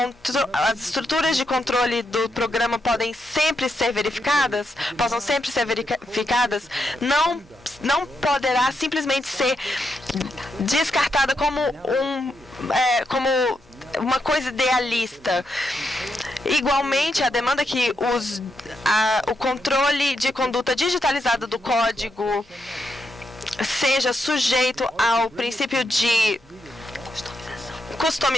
as estruturas de controle do programa possam sempre ser verificadas, não poderá simplesmente ser descartada como uma coisa idealista. Igualmente, a demanda que o controle de conduta digitalizada do código seja sujeito ao princípio de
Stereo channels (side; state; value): both; normal; correlation 0.82